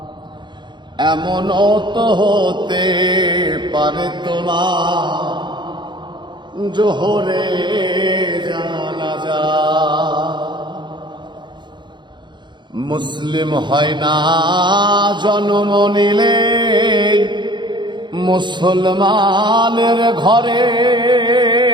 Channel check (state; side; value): late; left; 0.22 ms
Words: এমনও তো হতে পারে তোমার জোহরে জানাজা। মুসলিম হয় না জন্ম নিলে মুসলমানের ঘরে,